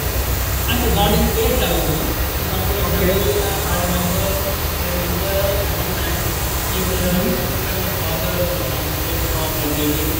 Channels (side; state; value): both; identical; correlation 1.00